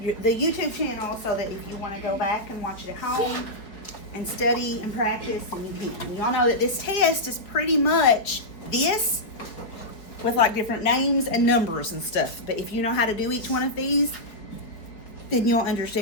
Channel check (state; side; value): late; right; 4.9 ms